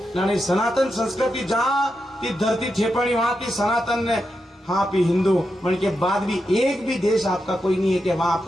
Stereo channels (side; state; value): both; normal; correlation 0.87